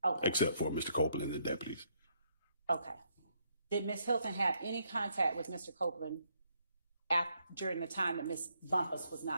Okay. Except for Mr. Copeland and the deputies. Okay. Did Ms. Hilton have any contact with Mr. Copeland during the time that Ms. Bumpus was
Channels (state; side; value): inverted; both; correlation -0.73